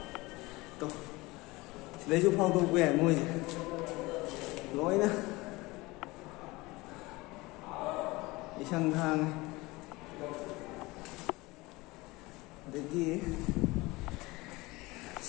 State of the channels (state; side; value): quieter; right; 22.1 dB